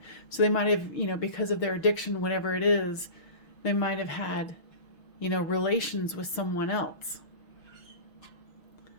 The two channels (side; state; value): right; late; 6.6 ms